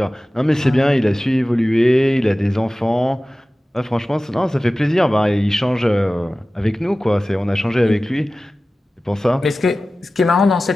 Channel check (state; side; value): normal; both; correlation 0.96